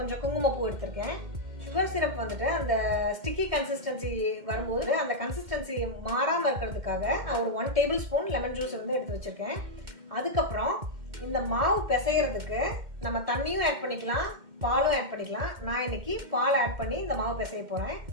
குங்குமப்பூ எடுத்திருக்கேன். சுகர் சிரப் வந்துட்டு அந்த ஸ்டிக்கி கன்சிஸ்டன்சி வரும்போது அந்த கன்சிஸ்டன்சி மாறாமல் இருக்கிறதுக்காக நான் ஒரு 1 டேபிள் ஸ்பூன் லெமன் ஜூஸ் வந்து எடுத்து வச்சிருக்கேன். அதுக்கப்புறம் இந்த மாவு பிசைகிறதுக்கு நம்ம தண்ணியும் ஆட் பண்ணிக்கலாம், பாலும் ஆட் பண்ணிக்கலாம். நான் இன்னைக்கு பால் ஆட் பண்ணி இந்த மாவு பிசைய போகிறேன்.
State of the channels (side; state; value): left; late; 2.1 ms